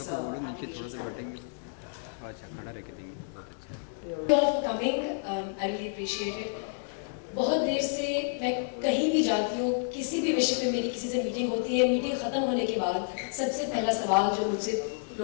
application is coming. Thank you all for coming. I really appreciate it. बहुत देर से मैं कहीं भी जाती हूँ, किसी भी विषय पे मेरी किसी से मीटिंग होती है, मीटिंग खत्म होने के बाद सबसे पहला सवाल जो मुझसे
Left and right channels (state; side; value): silent; right; digital silence